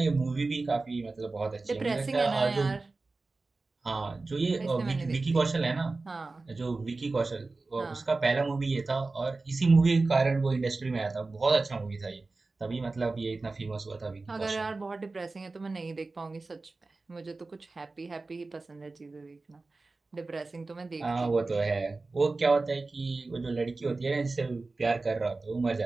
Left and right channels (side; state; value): left; quieter; 3.6 dB